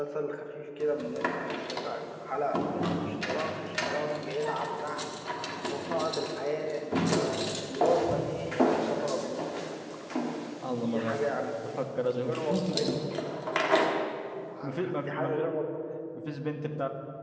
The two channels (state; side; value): identical; both; correlation 1.00